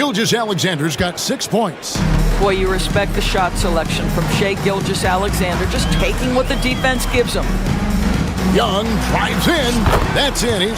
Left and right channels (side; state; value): both; identical; correlation 1.00